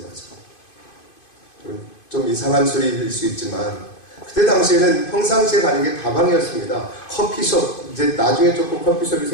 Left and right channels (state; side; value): late; right; 2.5 ms